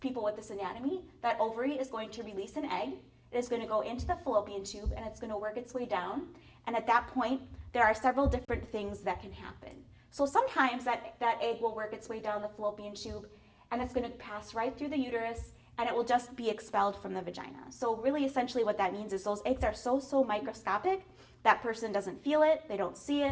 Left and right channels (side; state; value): both; identical; correlation 1.00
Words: people with this anatomy, that ovary is going to release an egg. It is going to go into the fallopian tube and it's going to work its way down. And at that point, there are several different things that can happen. So sometimes that egg will work its way down the fallopian tube and it's going to pass right through the uterus and it will just be expelled from the vagina. So really essentially what that means is those eggs are so microscopic, that person doesn't feel it, they don't see